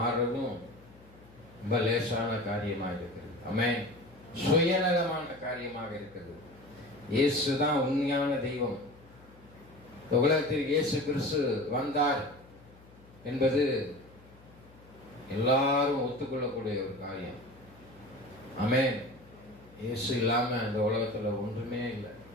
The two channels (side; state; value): left; noise; hum, 24 dB below the sound